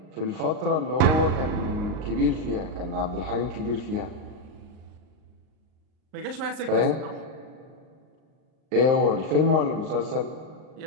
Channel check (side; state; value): left; late; 38 ms